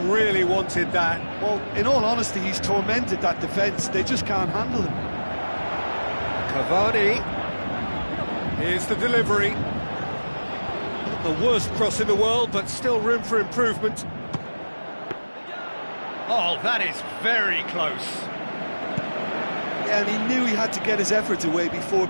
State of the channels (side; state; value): both; inverted; correlation -1.00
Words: wanted that. Well, in all honesty, he's tormented that defence. They just can't handle him. Cavani. Here's the delivery. Not the worst cross in the world, but still room for improvement. Oh, that is very close. Yeah, and he knew he had to get his efforts away before